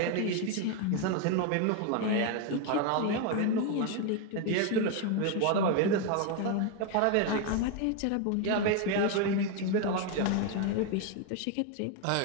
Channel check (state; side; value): different; both; correlation 0.01